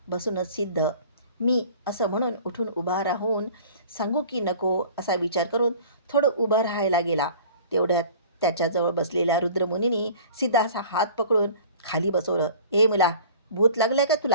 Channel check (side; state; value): both; inverted; correlation -0.45